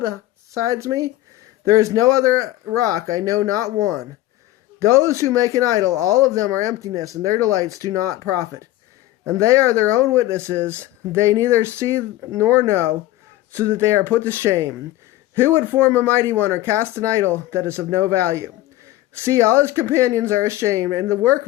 besides me? There is no other rock, I know not one. Those who make an idol, all of them are emptiness, and their delights do not profit. And they are their own witnesses. They neither see nor know, so that they are put to shame. Who would form a mighty one or cast an idol that is of no value? See, all his companions are ashamed, and the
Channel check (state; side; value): quieter; right; 15.7 dB